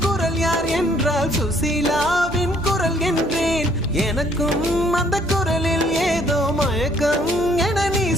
குரல் யார் என்றால் சுசீலாவின் குரல் என்றேன் எனக்கும் அந்த குரலில் ஏதோ மயக்கம் என நீ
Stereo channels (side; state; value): both; normal; correlation 0.63